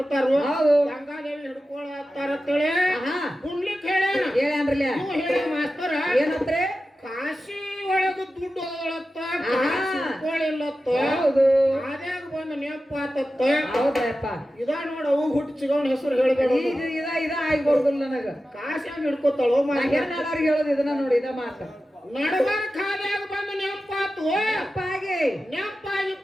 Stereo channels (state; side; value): normal; both; correlation 0.93